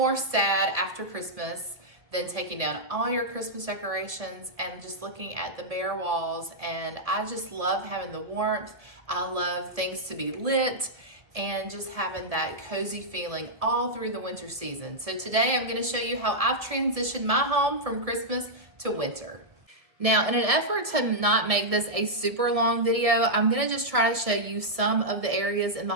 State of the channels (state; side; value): late; left; 1.7 ms